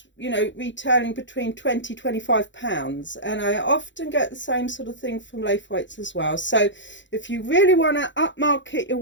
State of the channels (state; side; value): late; right; 0.54 ms